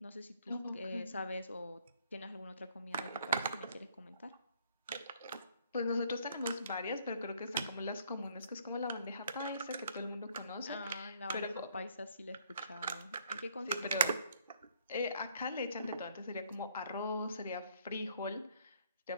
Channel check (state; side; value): inverted; both; correlation -0.65